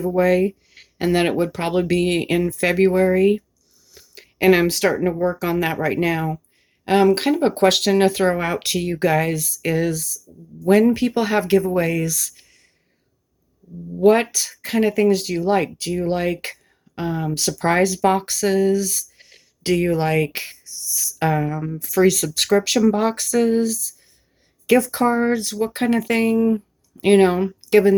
and that it would probably be in February, and I'm starting to work on that right now. Kind of a question to throw out to you guys is, when people have giveaways, what kind of things do you like? Do you like surprise boxes? Do you like free subscription boxes, gift cards? What kind of thing? Given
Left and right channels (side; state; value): both; identical; correlation 1.00